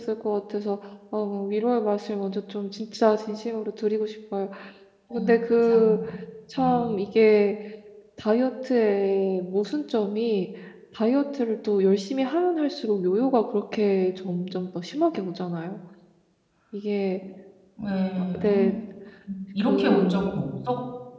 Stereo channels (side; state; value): both; identical; correlation 1.00